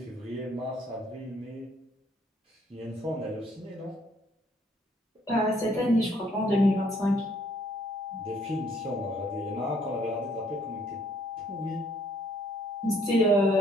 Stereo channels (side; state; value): both; normal; correlation 0.65